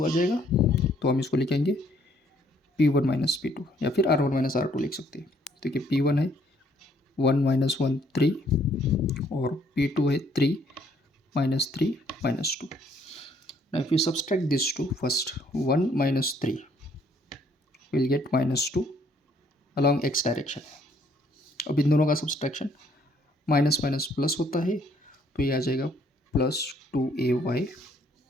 आ जाएगा, तो हम इसको लिखेंगे P1 - P2 या फिर R1 - R2 लिख सकते हैं। तो ये P1 है 1 - 1 3 और P2 है 3 - 3 - 2। Now if you subtract these two, first 1 - 3 will get -2 along x direction। अब इन दोनों का सब्सट्रैक्शन माइनस माइनस प्लस होता है, तो ये आ जाएगा +2ay।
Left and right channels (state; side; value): normal; both; correlation 0.65